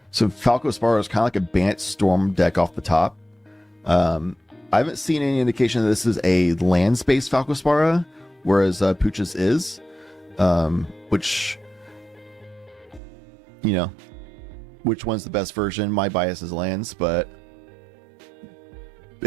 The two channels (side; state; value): left; drops out; at 13.0 s